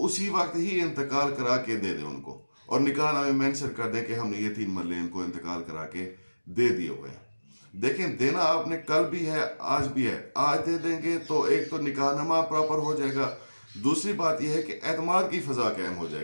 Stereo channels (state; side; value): inverted; both; correlation -1.00